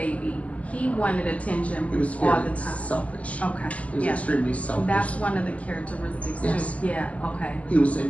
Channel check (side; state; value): right; late; 0.069 ms